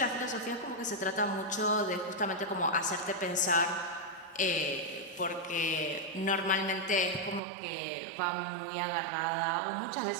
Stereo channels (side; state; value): left; drops out; at 7.4 s